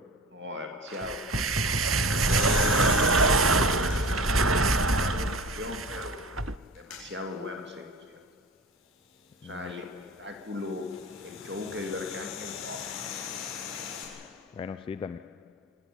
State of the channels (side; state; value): both; normal; correlation 0.37